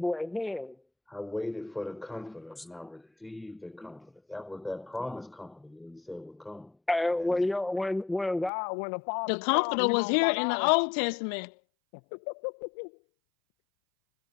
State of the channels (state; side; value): drops out; right; at 8.5 s